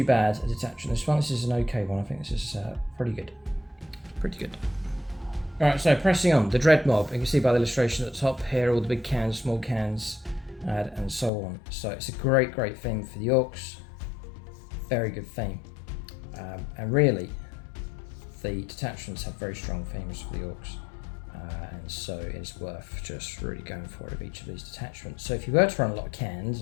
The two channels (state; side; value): drops out; right; at 11.3 s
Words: bad a detachment. This is an okay one. I think this is pretty good. Pretty good. Alright, so pressing on, the Dread Mob. You can see by the illustration at the top here, all the big cans, small cans, and so on. So it's a great, great theme for the Orks. Very good theme. And really, the detachments have very strong themes for the Orks. And so it's worth just really going for it of each of these detachments. So if you were to run a lot of cans